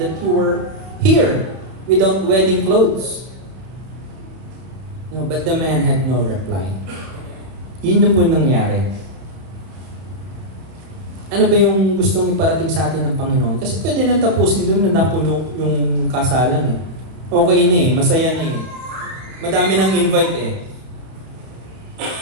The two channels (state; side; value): late; left; 31 ms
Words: that you were here without wedding clothes? No, but the man had no reply. Yun na po nangyari. Ano ba yung gustong iparating sa atin ng Panginoon? Kasi pwede nang tapusin doon na napuno yung kasalan eh. Okay na eh, masaya na eh. Madami nang invite eh.